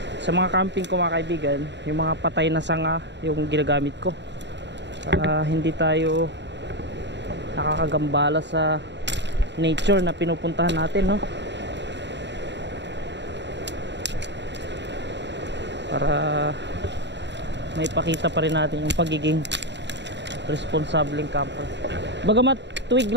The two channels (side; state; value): left; late; 0.52 ms